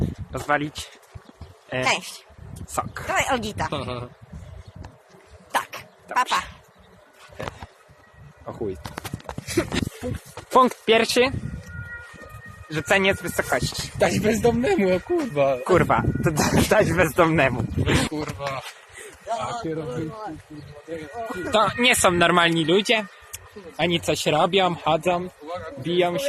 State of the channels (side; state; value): both; identical; correlation 1.00